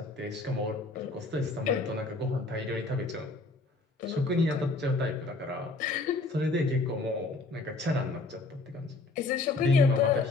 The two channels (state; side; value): quieter; right; 3.3 dB